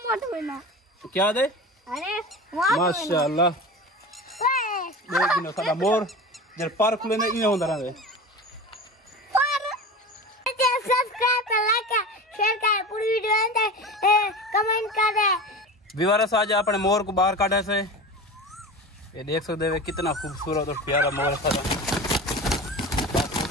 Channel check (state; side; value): normal; both; correlation 0.31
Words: मत बोलना क्या दे अरे माशाअल्लाह देख नो साडा मोर जर पार खुले ने इने होंदा रहे सब्सक्राइब कर लाइक कर शेयर कर पूरी वीडियो अंदर कमेंट कर दे विवारस आज अपने मोर को बाहर काढ़े से ये देख सकते हो कितना खूबसूरत और प्यारा मोर है